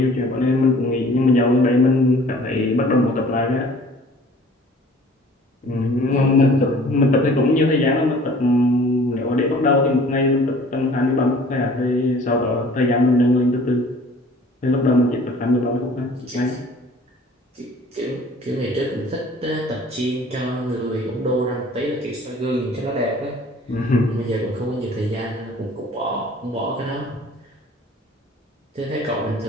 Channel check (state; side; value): normal; both; correlation 0.50